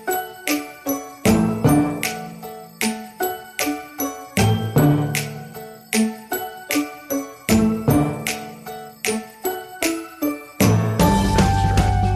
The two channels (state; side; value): identical; both; correlation 1.00